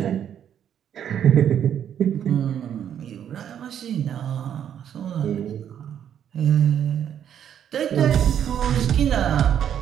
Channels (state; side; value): quieter; left; 9.4 dB